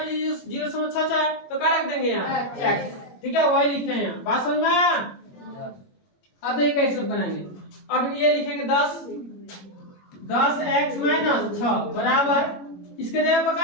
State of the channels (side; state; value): right; late; 21 ms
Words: 0.66 है तो क्या रख देंगे यहाँ x। ठीक है, वही लिखे हैं यहाँ। बात समझ में आया? अब ये कैसे बनाएंगे, अब ये लिखेंगे 10x - 6 बराबर इसके जगह पर